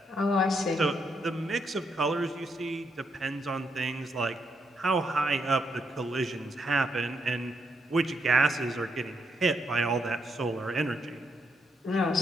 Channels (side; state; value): both; normal; correlation 0.78